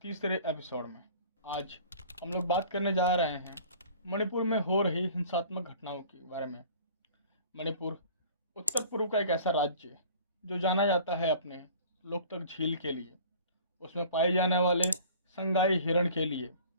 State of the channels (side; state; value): both; inverted; correlation -0.47